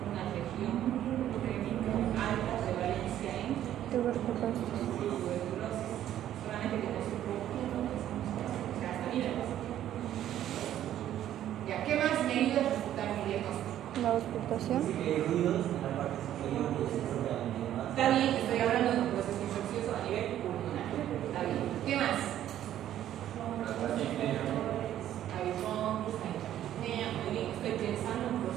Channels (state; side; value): quieter; left; 11.8 dB